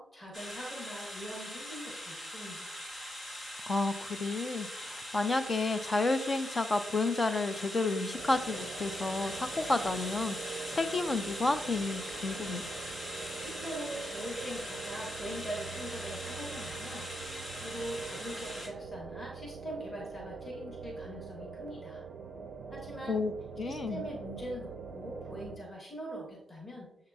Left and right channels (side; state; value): both; normal; correlation 0.83